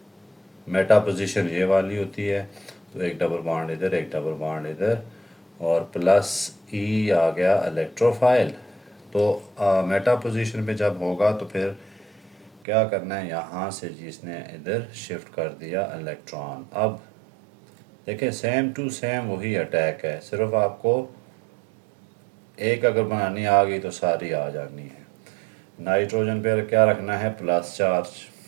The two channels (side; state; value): left; drops out; at 12.6 s